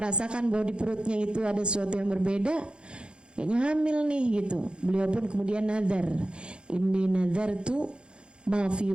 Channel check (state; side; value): late; left; 0.053 ms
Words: bahwa di perutnya itu ada sesuatu yang berbeda, kayaknya hamil nih gitu. Beliau pun kemudian nazar, inni nazartu ma fi